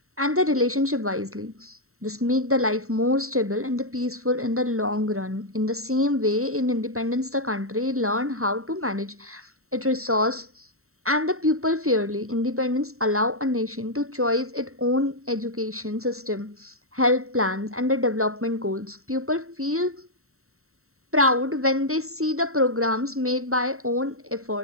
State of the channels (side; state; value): left; late; 0.63 ms